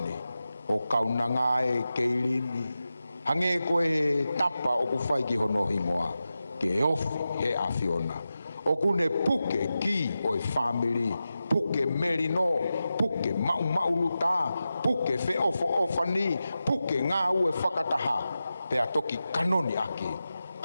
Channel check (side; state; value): both; inverted; correlation -0.92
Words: o kaunanga e Kayleen, hange koe he tapa o ku whai ki hono hingoa, ke ofi he awhiona. O kune puke ki o e family, puke merino, puke mau luta, puke fe ofani, puke ngā ue whakataha, pea toki kanoni ake,